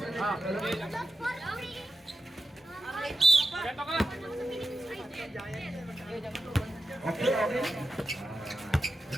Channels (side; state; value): both; normal; correlation 0.90